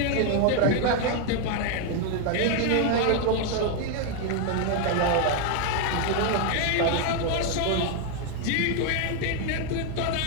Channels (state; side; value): different; both; correlation 0.01